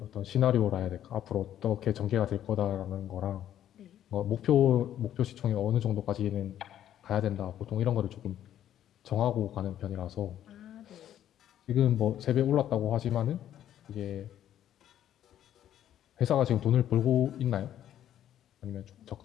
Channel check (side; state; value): right; quieter; 11.1 dB